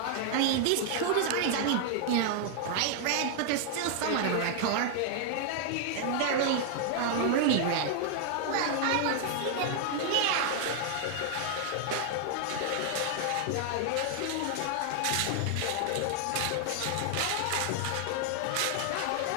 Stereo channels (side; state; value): both; different; correlation 0.00